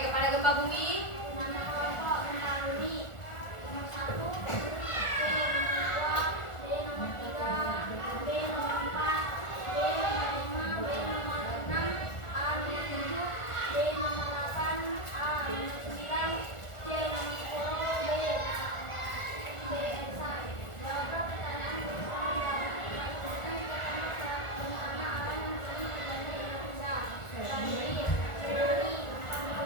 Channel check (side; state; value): right; late; 1.4 ms